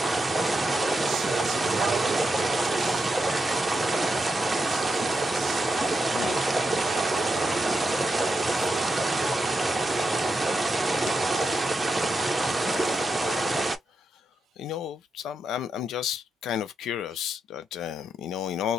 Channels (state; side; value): normal; both; correlation 0.85